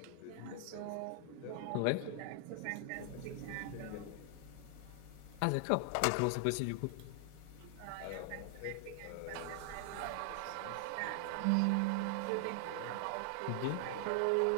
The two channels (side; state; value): both; different; correlation 0.00